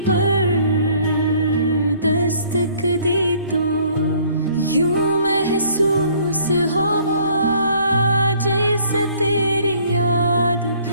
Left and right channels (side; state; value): both; inverted; correlation -0.58